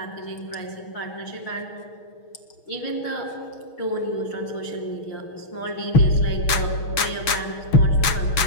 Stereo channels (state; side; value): late; right; 6.4 ms